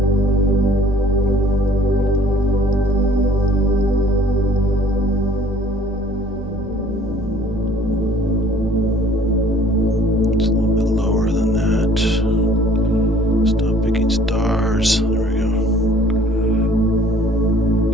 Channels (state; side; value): normal; both; correlation 0.55